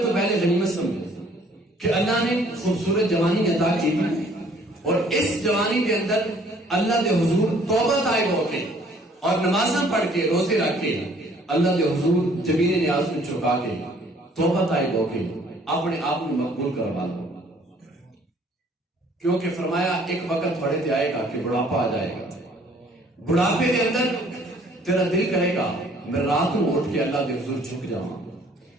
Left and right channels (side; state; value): both; normal; correlation 0.59